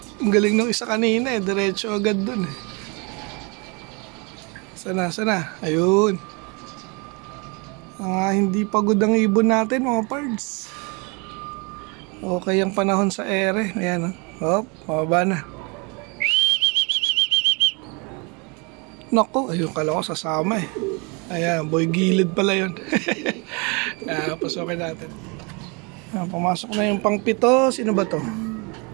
Ang galing ng isa kanina eh. Diretso agad dun eh. Sana. Ayun. Hindi pagod ang ibon natin mga pards. Okay ang panahon sa ere. Ayan Hop, mababa na. Nako, ayun kala ko sasama eh. Ayan, boy gilid pala yun. Pasukin natin. Pumasok na yung pang 7. Sino ba to?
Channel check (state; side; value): quieter; left; 31.1 dB